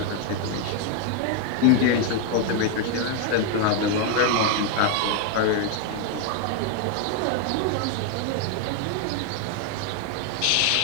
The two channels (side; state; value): both; different; correlation 0.01